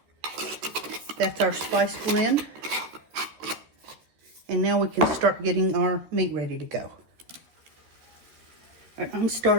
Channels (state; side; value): late; left; 13 ms